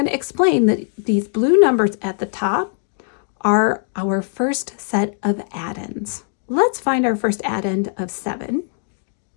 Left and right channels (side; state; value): right; silent; 56 dB below the other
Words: to explain that these blue numbers at the top are our first set of addends. Let's find our first addend of 7.